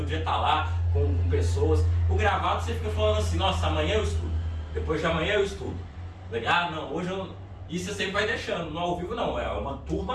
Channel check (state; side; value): identical; both; correlation 1.00